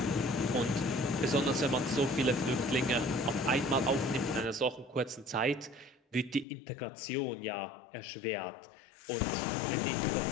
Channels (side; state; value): right; drops out; at 6.5 s